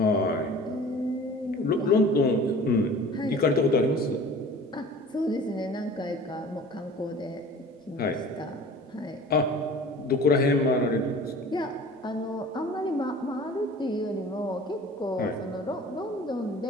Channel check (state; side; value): normal; both; correlation 0.44